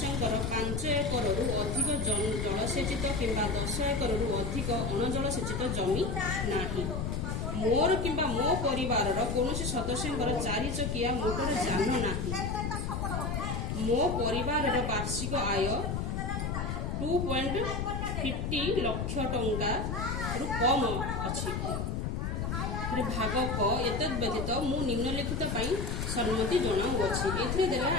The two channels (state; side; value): noise; left; rumble, 2 dB below the sound